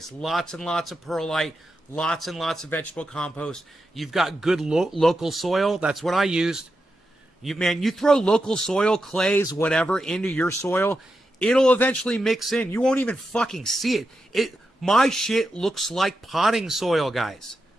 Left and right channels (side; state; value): both; normal; correlation 0.88